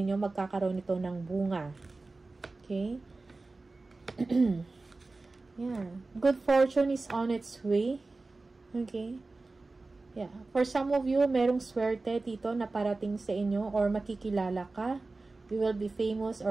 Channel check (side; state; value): left; quieter; 3.4 dB